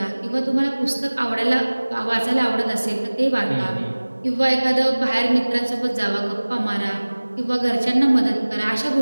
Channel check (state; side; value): inverted; both; correlation -1.00